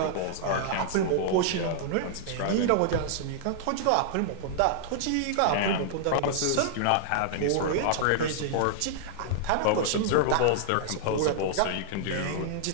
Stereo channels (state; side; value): different; both; correlation -0.01